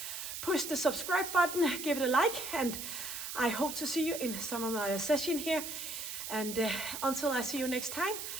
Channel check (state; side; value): noise; right; hiss, 6 dB below the sound